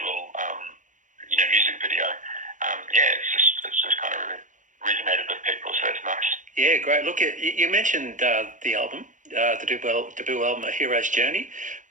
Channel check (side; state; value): left; late; 0.37 ms